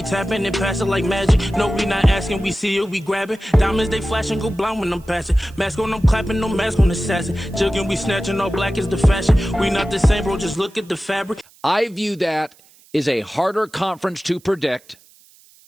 tapping and passing like magic. No, we not asking, we see it, we grabbing. Diamonds, they flashing, go blind when I'm passing. Mask on, I'm clapping, no mask on assassin. Jugging, we snatching, all black is the fashion. We not the same, bro, just look at the fabric. I view that as a harder conference to predict.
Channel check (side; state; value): right; noise; hiss, 28 dB below the sound